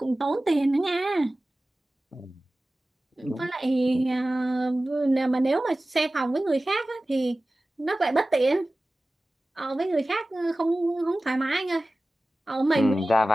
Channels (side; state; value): both; normal; correlation 0.97